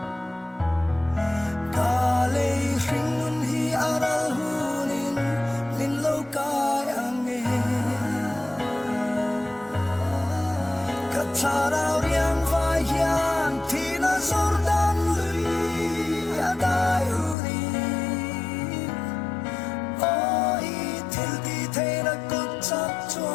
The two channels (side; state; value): right; drops out; at 17.4 s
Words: ka le ring nun hi aral hunin min lo kai ange ka tharau riang vai hian thi na zordan lui adai uri oi thil ti the na kut chak